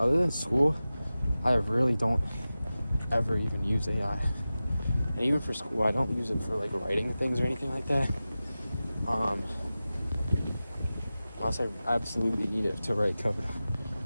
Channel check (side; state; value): both; inverted; correlation -0.95